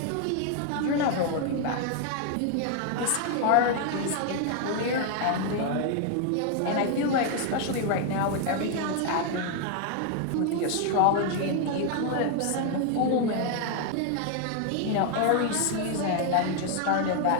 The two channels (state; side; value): different; both; correlation 0.00